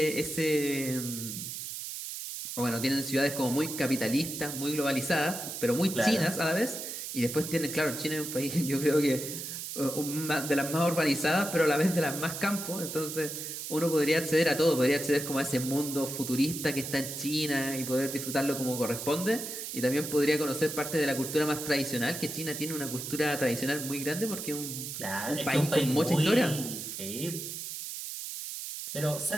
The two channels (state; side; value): noise; right; hiss, 7 dB below the sound